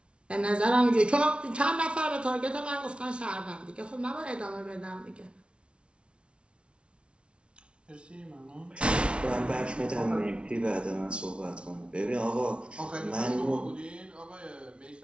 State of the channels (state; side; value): late; left; 0.058 ms